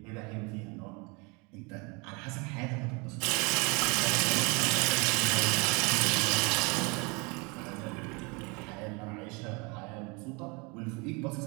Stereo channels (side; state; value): left; quieter; 29.4 dB